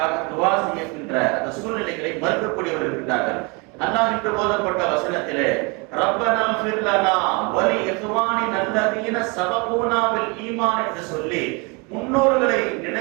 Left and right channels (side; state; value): left; quieter; 29.9 dB